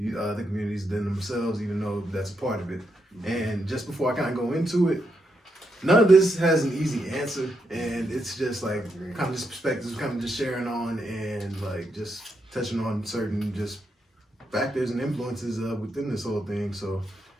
communities than themselves, even though that's a part of it. And just before I kind of go into it, none of this has an easy answer, and it's just like kind of just perspectives, kind of just sharing on and like just touching on certain just factors and influences within this whole thing. So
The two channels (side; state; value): both; normal; correlation 0.81